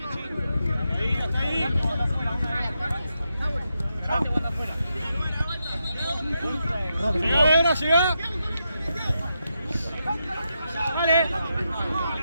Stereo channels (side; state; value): both; inverted; correlation -0.85